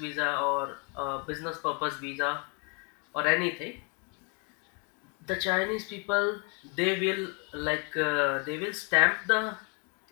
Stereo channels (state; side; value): quieter; right; 33.6 dB